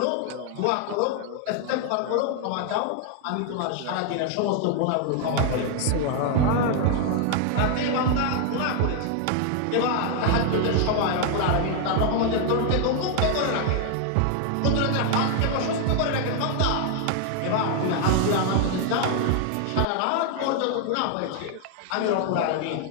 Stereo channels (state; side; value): different; both; correlation 0.00